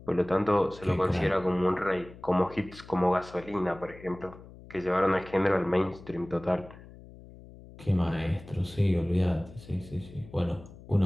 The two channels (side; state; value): left; noise; hum, 19 dB below the sound